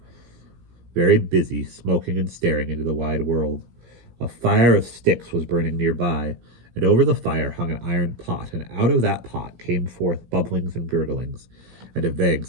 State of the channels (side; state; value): left; late; 17 ms